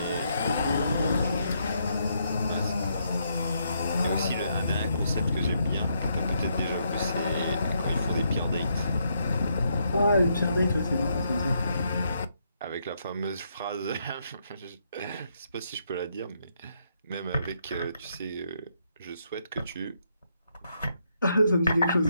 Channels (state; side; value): inverted; both; correlation -0.76